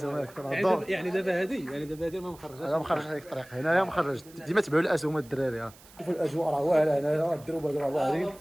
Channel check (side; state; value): right; noise; hiss, 23 dB below the sound